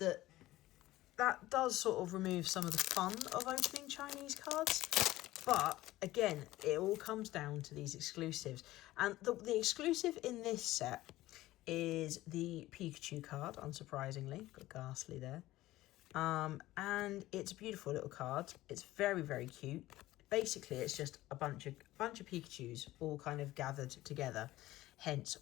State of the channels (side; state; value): right; quieter; 16.6 dB